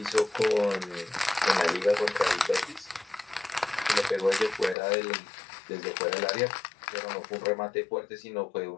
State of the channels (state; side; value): drops out; right; at 4.8 s